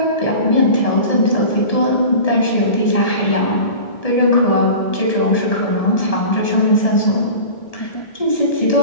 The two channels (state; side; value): late; right; 1.7 ms